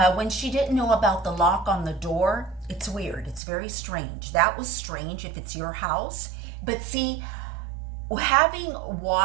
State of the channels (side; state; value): left; drops out; at 3.4 s